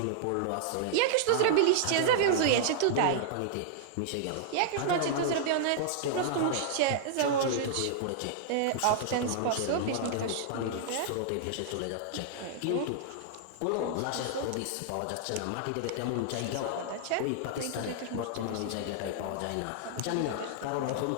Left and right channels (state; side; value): different; both; correlation -0.01